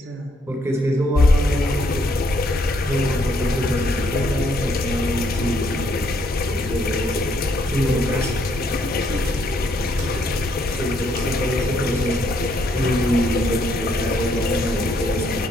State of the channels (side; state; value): both; normal; correlation 0.71